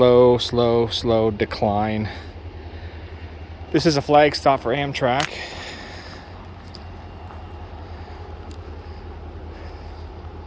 decline. This is a flag stop for Amtrak.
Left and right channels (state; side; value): identical; both; correlation 1.00